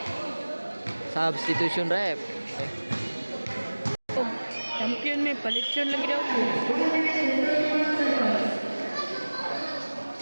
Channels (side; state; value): both; inverted; correlation -1.00